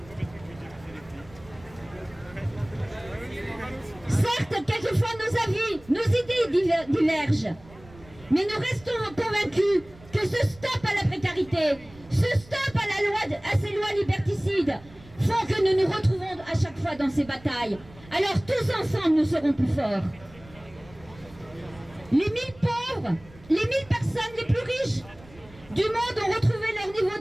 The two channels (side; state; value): right; noise; rumble, 22 dB below the sound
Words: Certes, quelquefois nos avis, nos idées divergent. Mais nous restons convaincus que ce stop à la précarité, ce stop à ces lois liberticides font que nous nous retrouvons à chaque fois dans ces batailles. Alors tous ensemble, nous serons plus forts. Les 1000 pauvres, les 1000 personnes les plus riches du monde ont retrouvé leur niveau